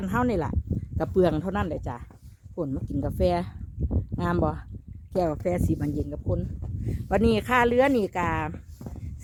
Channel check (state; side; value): identical; both; correlation 1.00